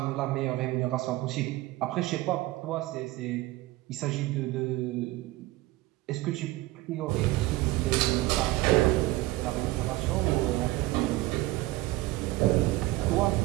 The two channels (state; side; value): quieter; left; 18.6 dB